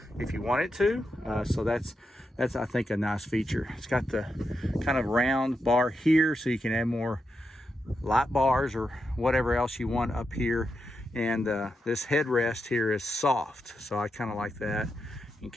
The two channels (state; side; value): normal; both; correlation 0.86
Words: if you want it to. So that's I think a nice feature. It's got the kind of round bar here, so you can add more light bars or whatever else you want up here. And this headrest here is soft, so I kind of like that in